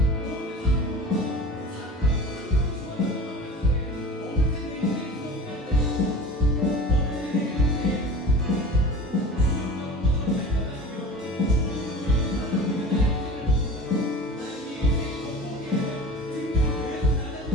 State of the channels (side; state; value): both; normal; correlation 0.37